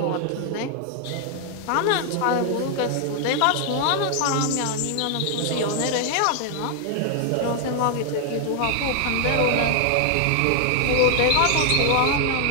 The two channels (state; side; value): different; both; correlation 0.00